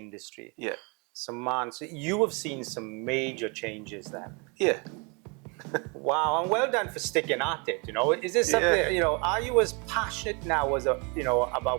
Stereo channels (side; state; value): left; quieter; 31.6 dB